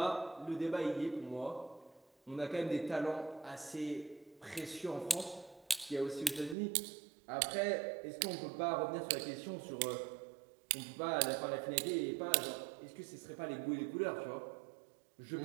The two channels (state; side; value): drops out; left; at 6.6 s